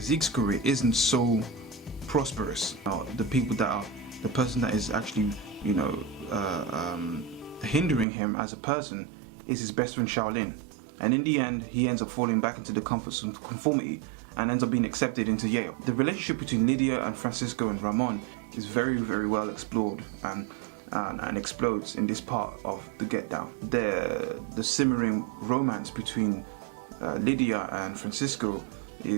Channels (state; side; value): drops out; left; at 8.1 s